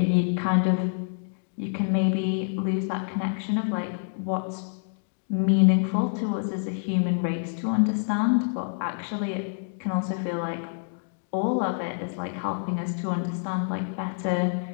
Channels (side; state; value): right; silent; digital silence